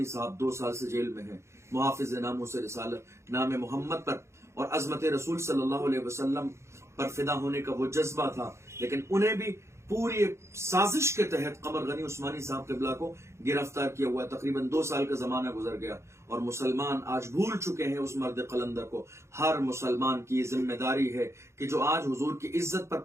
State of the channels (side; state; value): left; late; 0.13 ms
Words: صاحب 2 سال سے جیل میں ہیں، محافظ ناموس رسالت، نام محمد پر اور عظمت رسول صلی اللہ علیہ وسلم پر فدا ہونے کا وہ جذبہ تھا، لیکن انہیں بھی पूरी साजिश के तहत कमर गनी उस्मानी साहब क़िबला को गिरफ्तार किया हुआ है। तकरीबन 2 साल का जमाना गुजर गया और मुसलमान आज भूल चुके हैं उस मर्द कलंदर को। हर मुसलमान की जिम्मेदारी है कि जो आज हुजूर की इज्जत पर